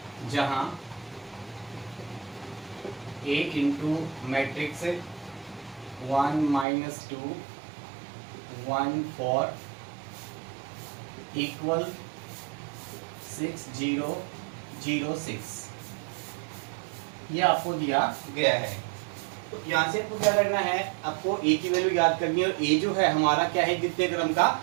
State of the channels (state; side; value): drops out; left; at 6.7 s